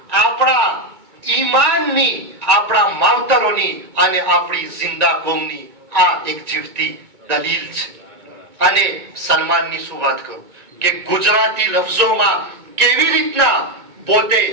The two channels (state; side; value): late; left; 2.2 ms